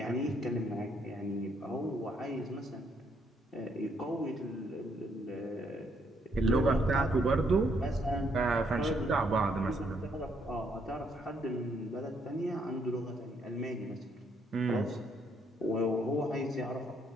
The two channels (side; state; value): both; normal; correlation 0.71